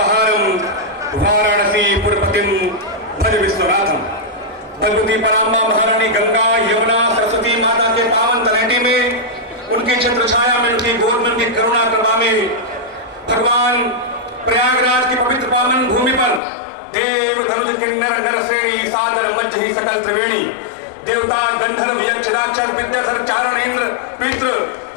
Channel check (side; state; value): right; drops out; at 16.4 s